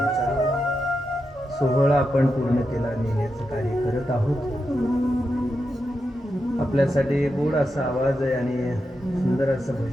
सोहळा आपण पूर्णतेला नेण्याचं कार्य करत आहोत. आपल्यासाठी गोड असा आवाज आहे आणि सुंदर असं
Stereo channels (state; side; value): normal; both; correlation 0.87